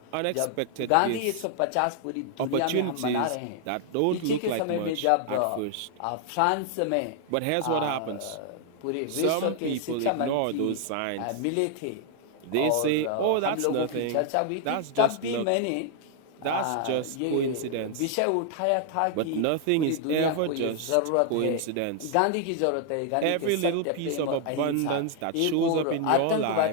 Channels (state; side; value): different; both; correlation 0.00